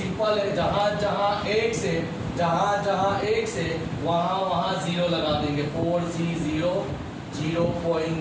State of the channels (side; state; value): both; identical; correlation 1.00